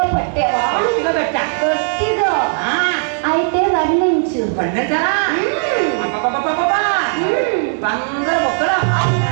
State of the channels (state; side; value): silent; left; 59 dB below the other